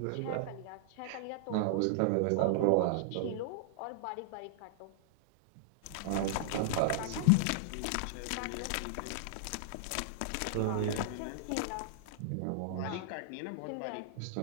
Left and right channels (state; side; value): different; both; correlation -0.01